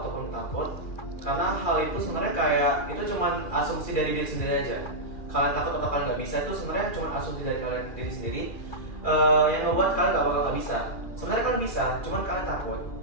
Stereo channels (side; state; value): right; late; 2.4 ms